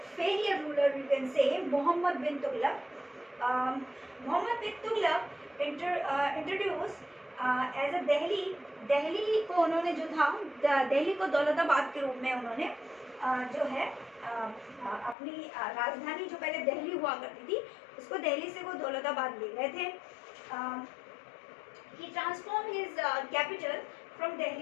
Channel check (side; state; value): right; drops out; at 15.2 s